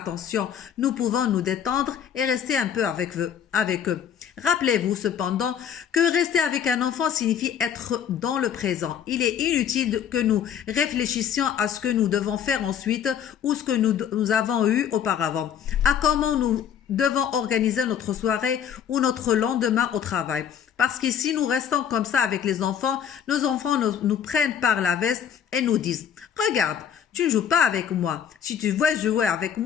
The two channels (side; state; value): right; quieter; 8.6 dB